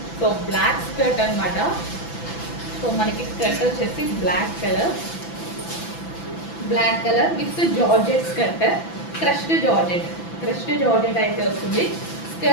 సో బ్లాక్ స్కర్ట్ అనమాట. సో మనకి స్కర్ట్ వచ్చేసి black colour with georgette skirt, crushed georgette అయితే వస్తుంది.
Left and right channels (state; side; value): late; right; 6.0 ms